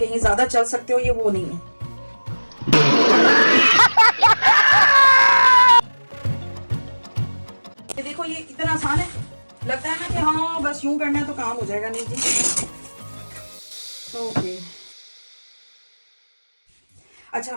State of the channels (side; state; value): both; inverted; correlation -1.00